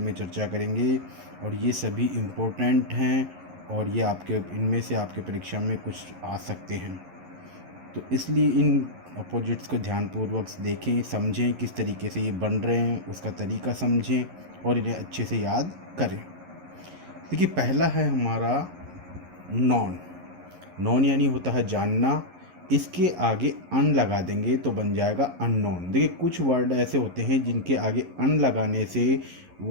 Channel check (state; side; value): late; left; 11 ms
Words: चर्चा करेंगे और ये सभी इम्पोर्टेंट हैं और ये आपके इनमें से आपके परीक्षा में कुछ आ सकते हैं। तो इसलिए इन अपोजिट्स को ध्यानपूर्वक देखें, समझें किस तरीके से ये बन रहे हैं, उसका तरीका समझें और इन्हें अच्छे से याद करें। देखिए, पहला है हमारा नॉन। नॉन यानी होता है जानना। इसके आगे अन लगा देंगे तो बन जाएगा अननोन। देखिए, कुछ वर्ड ऐसे होते हैं जिनके आगे अन लगाने से